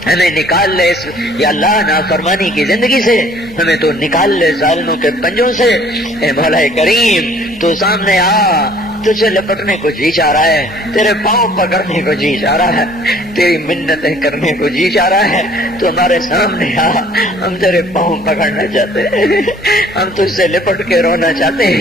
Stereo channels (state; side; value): normal; both; correlation 0.55